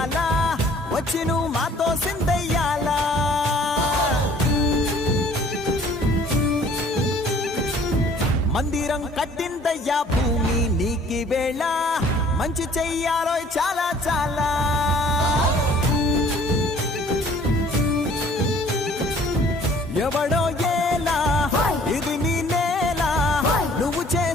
వచ్చి నువ్వు మాతో సిందయ్యాలా మందిరం కట్టిందయ్యా భూమి నీకి వేళ మంచి చెయ్యాలో చాలా చాలా ఎవడో ఏలా ఇది నీ నేల నువ్వు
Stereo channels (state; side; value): normal; both; correlation 0.54